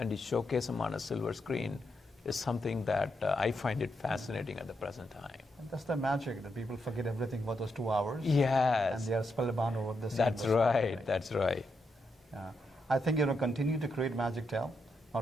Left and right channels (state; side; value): normal; both; correlation 0.82